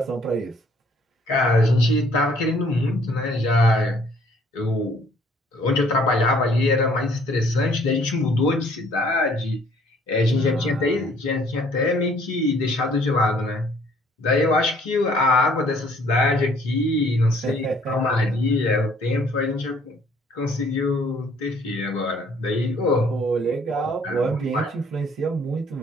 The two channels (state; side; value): normal; both; correlation 0.60